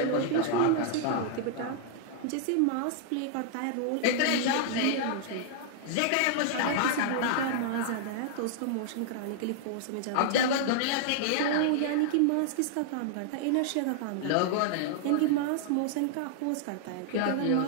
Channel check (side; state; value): both; different; correlation -0.01